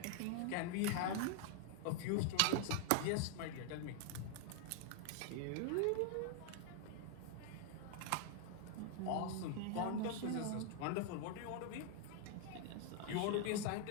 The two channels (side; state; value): both; different; correlation 0.00